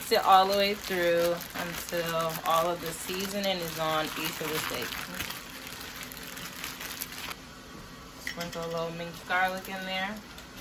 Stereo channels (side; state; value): both; identical; correlation 1.00